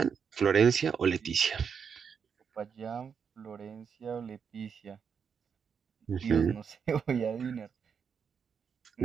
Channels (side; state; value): left; quieter; 6.7 dB